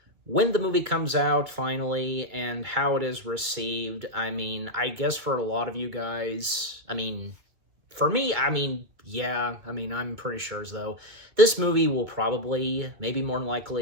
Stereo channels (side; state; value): left; late; 2.2 ms